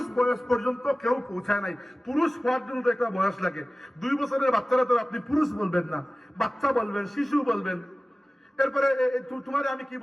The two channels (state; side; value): normal; both; correlation 0.97